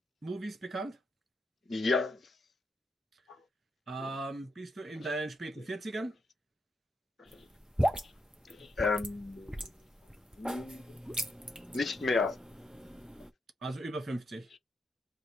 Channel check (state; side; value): normal; both; correlation 0.81